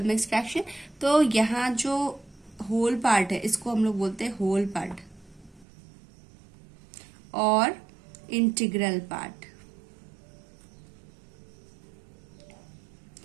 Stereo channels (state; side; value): drops out; left; at 5.7 s